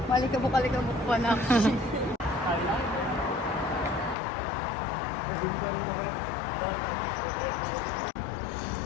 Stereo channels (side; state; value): right; drops out; at 4.2 s